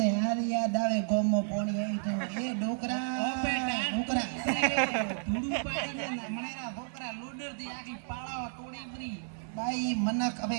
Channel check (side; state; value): left; silent; digital silence